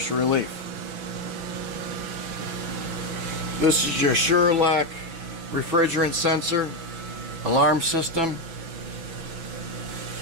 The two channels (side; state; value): left; late; 6.0 ms